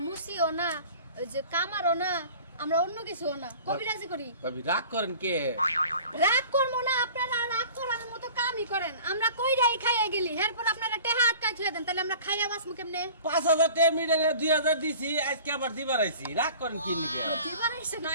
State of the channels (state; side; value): inverted; both; correlation -0.44